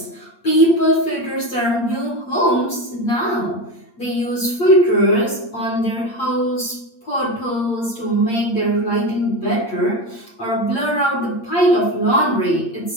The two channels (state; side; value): late; right; 8.6 ms